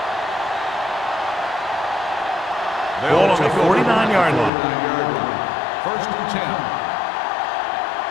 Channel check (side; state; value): right; drops out; at 4.5 s